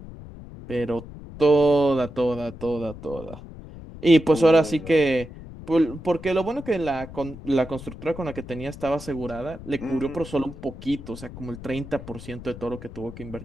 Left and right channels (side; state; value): left; noise; rumble, 14 dB below the sound